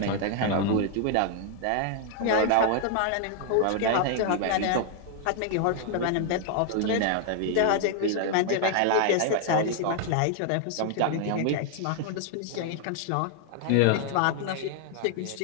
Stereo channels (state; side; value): different; both; correlation 0.00